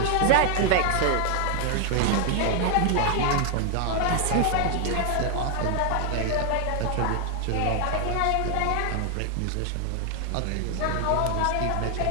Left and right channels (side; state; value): both; different; correlation 0.00